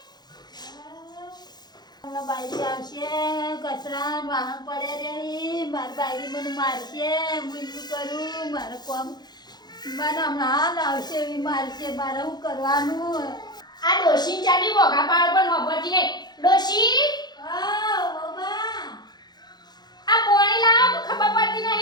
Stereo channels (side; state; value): right; late; 0.20 ms